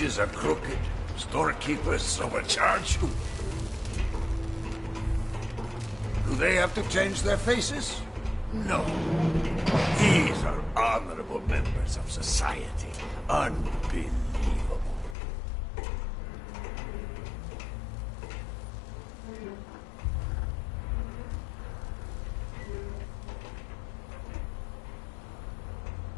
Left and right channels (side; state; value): right; drops out; at 15.2 s